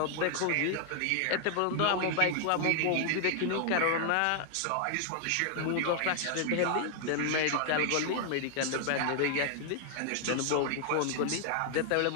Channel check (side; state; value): both; different; correlation 0.00